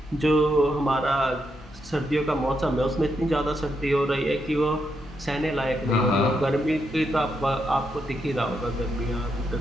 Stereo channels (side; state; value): both; normal; correlation 0.81